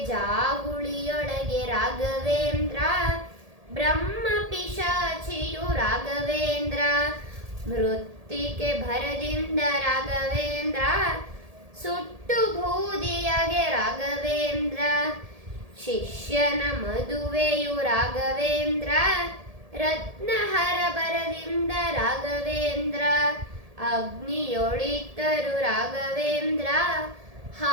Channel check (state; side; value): late; left; 1.7 ms